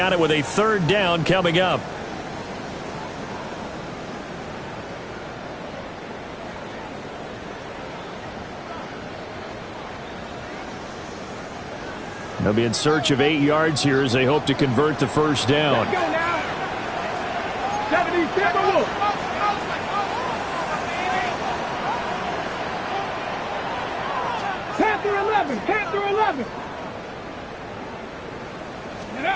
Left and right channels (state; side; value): identical; both; correlation 1.00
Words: it with a 3rd down coming up. They'll be in search of 8 yards here as they hope to convert the first down. Let's go now. 77 Wolf. 10 through 11, 10 through 11.